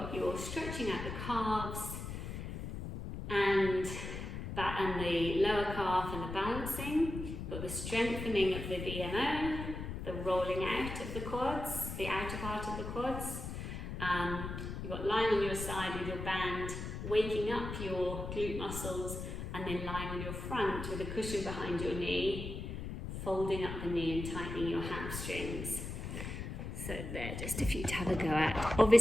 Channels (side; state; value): left; noise; rumble, 6 dB below the sound